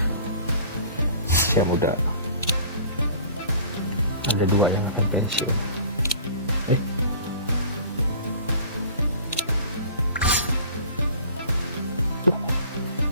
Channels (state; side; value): inverted; both; correlation -0.46